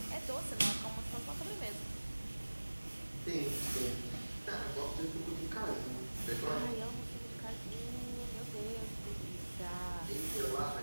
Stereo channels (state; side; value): inverted; both; correlation -1.00